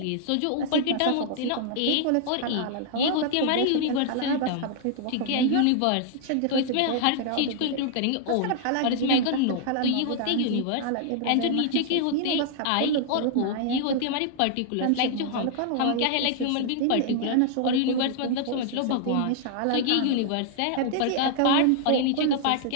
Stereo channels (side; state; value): both; different; correlation -0.01